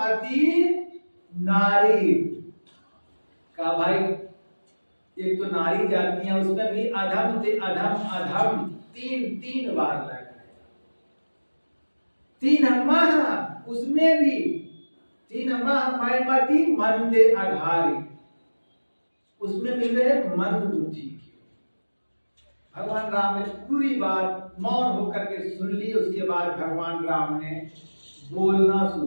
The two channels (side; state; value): both; inverted; correlation -1.00